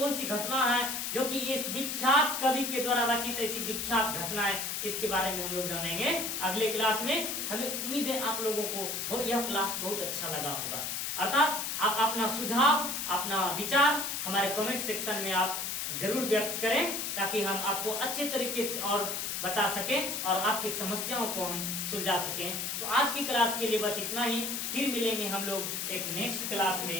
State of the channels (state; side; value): noise; left; hiss, 2 dB below the sound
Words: सी घटना है जो कि इस विख्यात कवि के द्वारा रचित ऐसी विख्यात घटना है, इसके बारे में हम लोग जानेंगे अगले क्लास में। हमें उम्मीद है आप लोगों को यह क्लास बहुत अच्छा लगा होगा, अर्थात आप अपना सुझाव, अपना विचार हमारे कमेंट सेक्शन में आप जरूर व्यक्त करें, ताकि हम आपको अच्छे तरीके से और बता सकें और आपकी समस्याओं को हम सुलझा सकें। तो आज की क्लास के लिए बस इतना ही, फिर मिलेंगे हम लोग एक नेक्स्ट क्लास